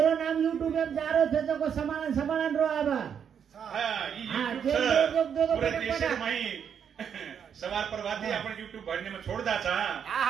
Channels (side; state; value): left; quieter; 7.8 dB